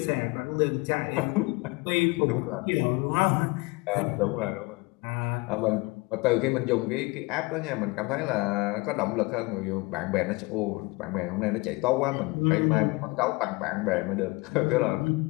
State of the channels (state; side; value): quieter; right; 25.3 dB